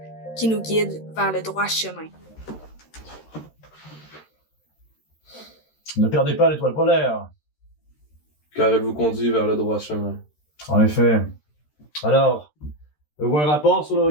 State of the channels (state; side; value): late; right; 13 ms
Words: qui nous guide vers le droit chemin. Ne perdez pas l'étoile polaire. Car elle vous conduit vers le droit chemin. En effet. Alors, avez-vous un rapport sur le